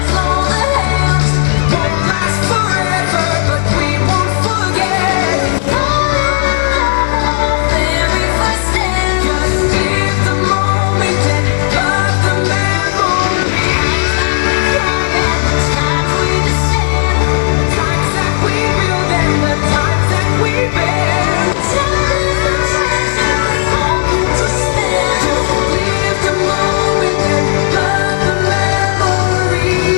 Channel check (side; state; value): right; silent; digital silence